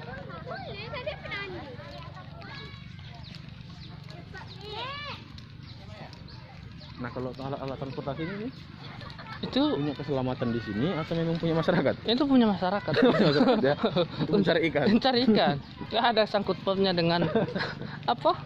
Nah kalau alat transportasi ini Itu punya keselamatan di sini atau memang punya masyarakat? itu punya masyarakat. Ya, untuk mencari ikan. Mencari ikan. Nggak ada sangkut pautnya dengan apa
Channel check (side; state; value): both; identical; correlation 1.00